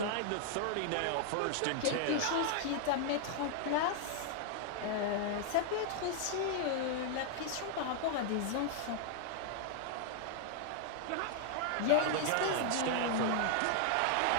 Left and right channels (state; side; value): different; both; correlation 0.00